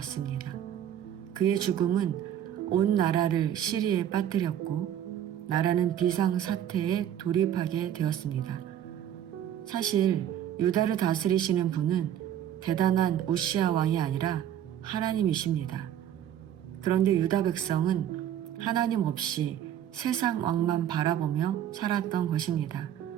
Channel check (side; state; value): left; quieter; 10.6 dB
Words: 그의 죽음은 온 나라를 시리에 빠뜨렸고 나라는 비상사태에 돌입하게 되었습니다. 사실 유다를 다스리시는 분은 대단한 우시야 왕이 아니라 하나님이십니다. 그런데 유다 백성은 하나님 없이 세상 왕만 바라보며 살았던 것입니다.